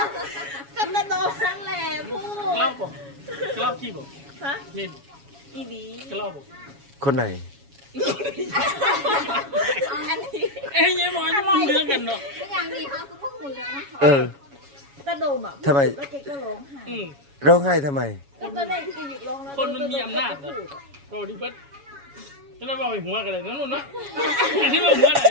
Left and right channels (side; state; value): left; late; 7.2 ms